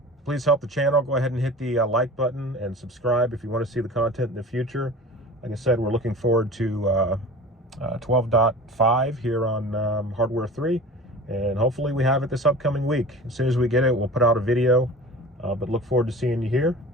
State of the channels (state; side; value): normal; both; correlation 0.38